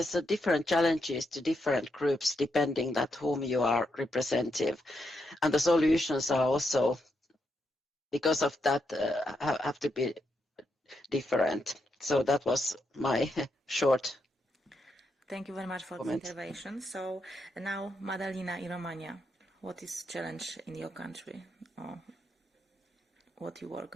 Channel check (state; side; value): normal; both; correlation 0.81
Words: a different challenges to different groups depending that whom you are representative, and the solutions are also because of that have to be different. So that was my short. Thank you very much for comment. the intervention. So now, Madalina, in Romania, what is challenge in your country, or what you work